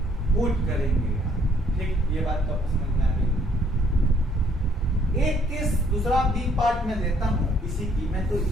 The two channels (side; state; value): both; normal; correlation 0.65